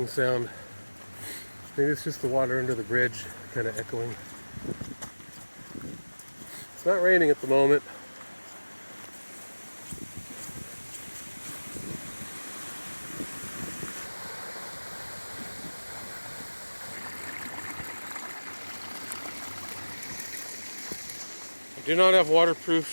sound. Maybe it's just the water under the bridge kind of echoing. It's not raining at the moment. I do not have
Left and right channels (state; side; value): inverted; both; correlation -1.00